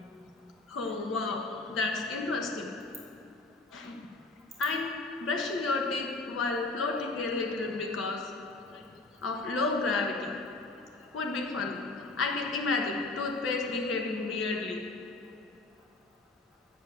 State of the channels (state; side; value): quieter; right; 3.2 dB